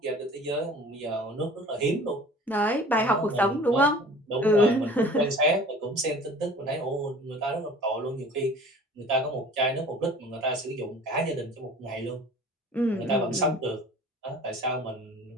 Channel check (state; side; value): normal; both; correlation 0.45